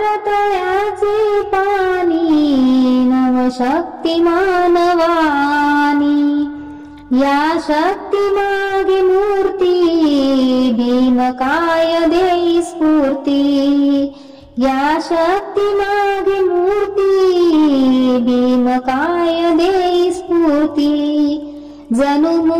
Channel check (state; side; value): identical; both; correlation 1.00